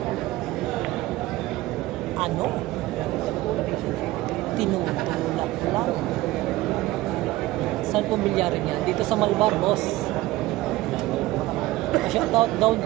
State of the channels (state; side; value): quieter; left; 17.8 dB